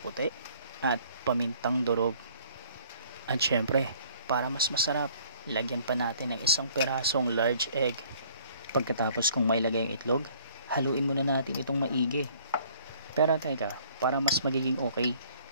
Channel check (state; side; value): inverted; both; correlation -0.58